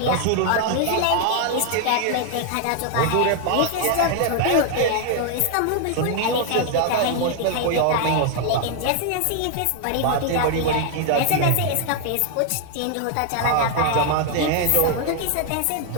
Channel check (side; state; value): both; different; correlation 0.00